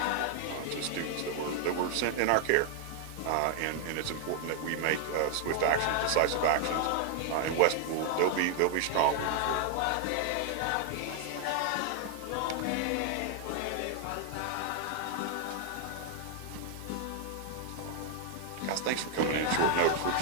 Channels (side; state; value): both; different; correlation 0.00